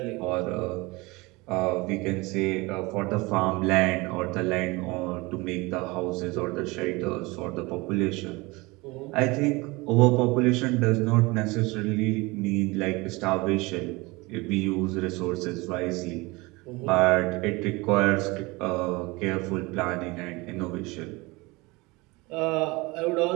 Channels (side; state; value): left; quieter; 23.8 dB